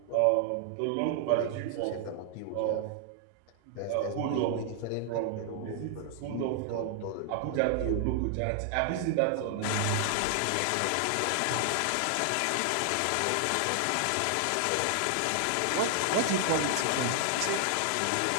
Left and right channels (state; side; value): different; both; correlation 0.00